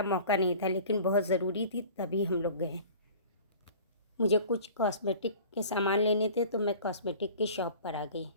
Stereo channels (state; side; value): inverted; both; correlation -0.44